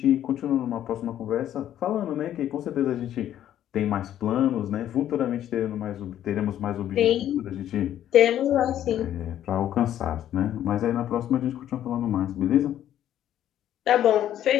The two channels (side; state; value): right; quieter; 11.4 dB